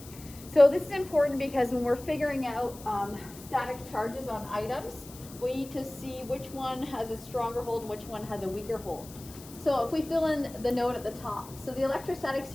So this is important because when we're figuring out static charges on items, we need to see which one has a stronger hold and which one has a weaker hold. So if we fill in the note at the top, so the electrostatic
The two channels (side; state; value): left; noise; hiss, 18 dB below the sound